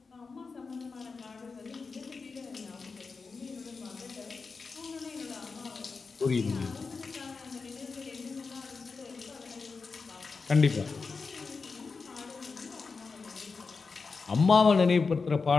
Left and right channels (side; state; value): right; quieter; 4.6 dB